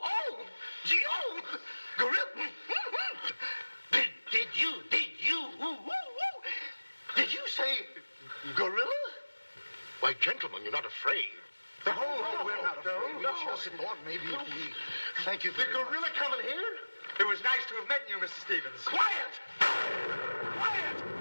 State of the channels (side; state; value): both; inverted; correlation -1.00